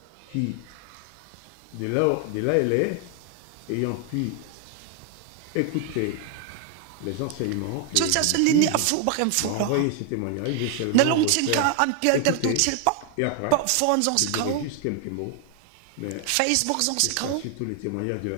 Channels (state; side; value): different; both; correlation 0.00